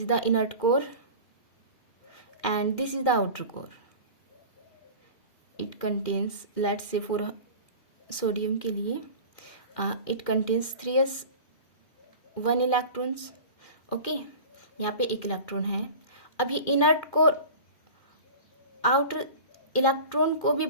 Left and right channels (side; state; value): right; late; 2.4 ms